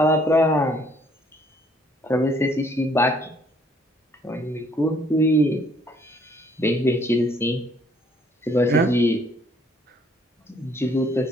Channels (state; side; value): normal; both; correlation 0.63